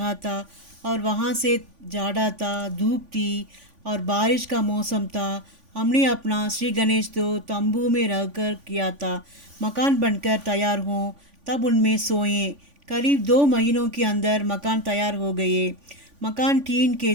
था। और वहाँ से जाड़ा था, धूप थी और बारिश का मौसम था। हमने अपना श्री गणेश तो तंबू में रहकर किया था। मकान बनकर तैयार हों तब उनमें सोएं। करीब 2 महीनों के अंदर मकान तैयार हो गए। मकान टीन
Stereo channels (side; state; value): left; late; 3.5 ms